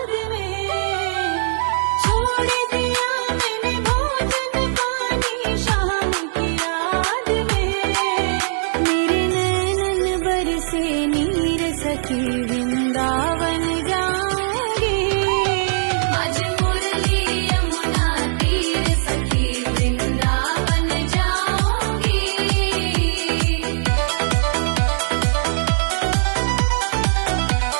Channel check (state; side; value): silent; left; digital silence